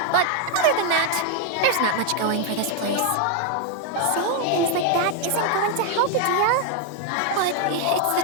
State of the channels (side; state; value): both; different; correlation 0.01